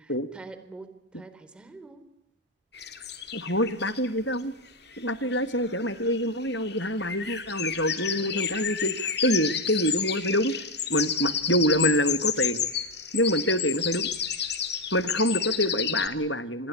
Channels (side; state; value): both; normal; correlation 0.08